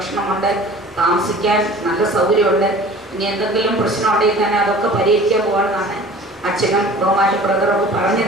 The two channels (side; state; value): both; normal; correlation 0.44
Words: താമസിക്കാൻ നല്ല സൗകര്യമുണ്ട്. ഇനി എന്തെങ്കിലും പ്രശ്നമുണ്ടെങ്കിൽ തന്നെ അതൊക്കെ പരിഹരിക്കാൻ പോകണമെന്നാണ് അച്ഛനും ബഹുമാന ബ്രദറൊക്കെ